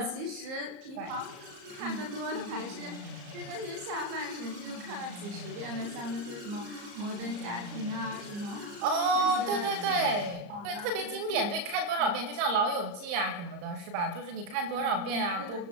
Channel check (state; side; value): late; left; 34 ms